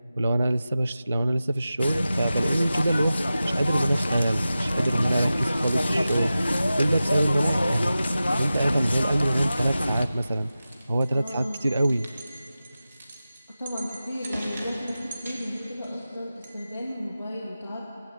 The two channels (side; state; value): both; inverted; correlation -0.94